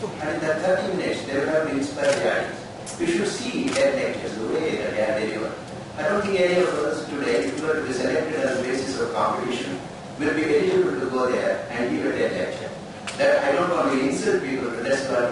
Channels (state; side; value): identical; both; correlation 1.00